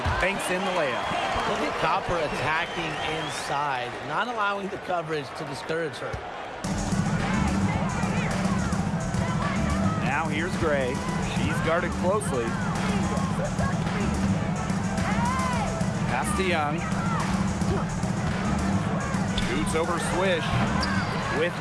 banks in the layup. Look at Copper attacking inside, not allowing the coverage to discourage her. Now here's Gray. She's guarded closely. Pass to Young. Shoots over Swish. With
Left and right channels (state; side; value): identical; both; correlation 1.00